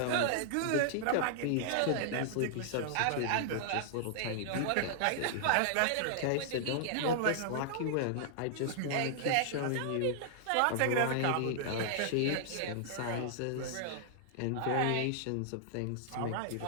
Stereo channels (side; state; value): both; different; correlation -0.01